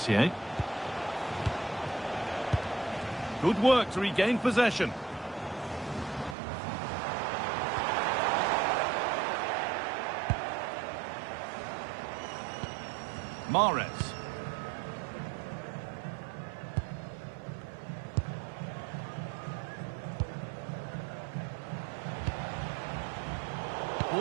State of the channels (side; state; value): left; drops out; at 6.4 s